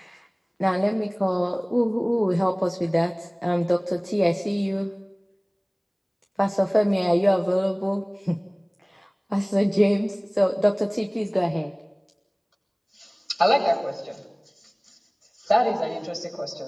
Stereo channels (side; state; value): both; identical; correlation 1.00